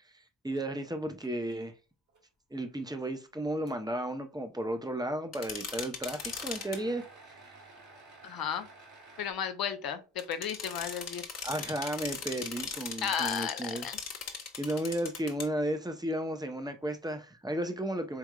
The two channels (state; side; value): normal; both; correlation 0.58